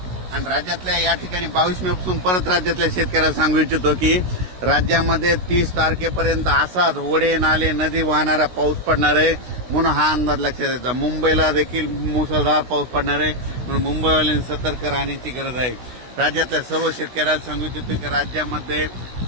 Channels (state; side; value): late; left; 16 ms